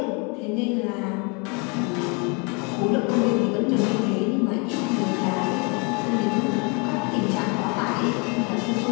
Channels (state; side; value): quieter; right; 32.4 dB